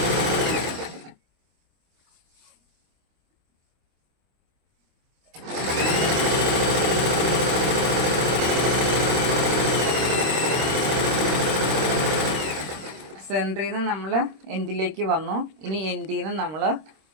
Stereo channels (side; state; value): left; late; 26 ms